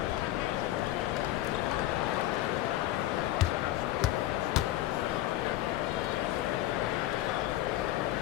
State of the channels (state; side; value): quieter; right; 14.8 dB